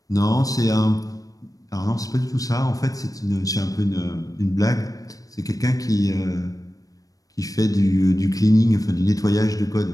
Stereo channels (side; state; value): right; late; 0.17 ms